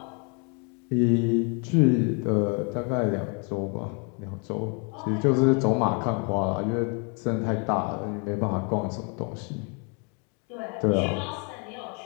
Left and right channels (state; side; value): quieter; right; 36.1 dB